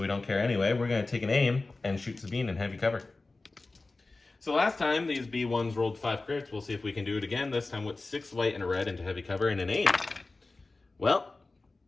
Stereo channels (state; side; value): quieter; right; 3.4 dB